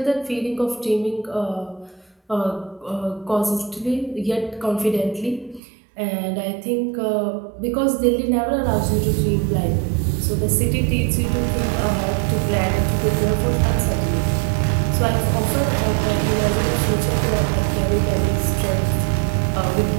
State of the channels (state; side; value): drops out; left; at 5.6 s